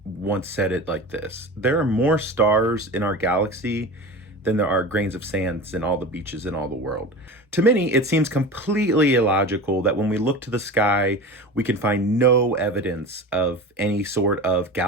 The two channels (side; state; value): both; normal; correlation 0.32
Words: once said it like this: there are more stars in our galaxy than there are grains of sand in all the beaches in all the world. To many, it seems completely illogical that when we look to the sky, we can find no evidence of any sort of